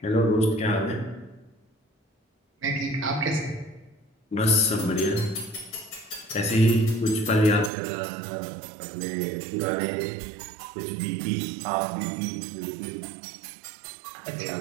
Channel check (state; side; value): drops out; left; at 7.7 s